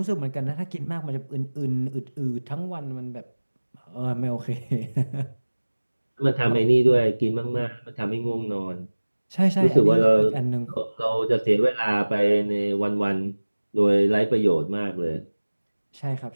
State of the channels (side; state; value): both; inverted; correlation -1.00